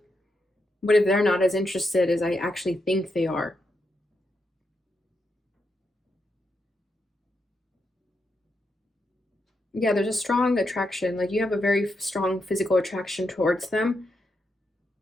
they're not as interested as I actually think they are? Yeah, there's a strong attraction. Like you have a very strong physical attraction towards them.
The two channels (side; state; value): both; normal; correlation 0.83